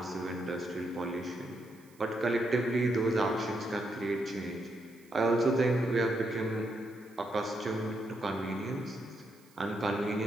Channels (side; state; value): right; noise; hiss, 28 dB below the sound